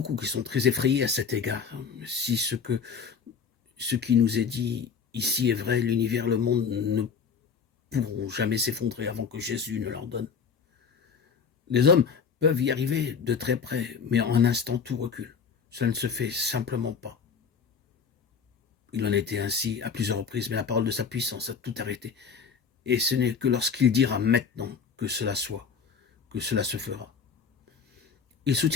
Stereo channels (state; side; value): quieter; right; 6.1 dB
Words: qui sont très effrayés à cet égard. Si ce qui nous est dit ici est vrai, l'univers, le monde ne pourront jamais s'effondrer avant que Jésus ne leur donne. Les hommes peuvent y arriver de très près, mais en un instant tout recule. Cela ne se fait simplement pas. Il en a été ainsi à plusieurs reprises, mais la parole de sa puissance a tout arrêté. Et ce n'est que lorsqu'il dira maintenant que cela soit, que cela se fera. Il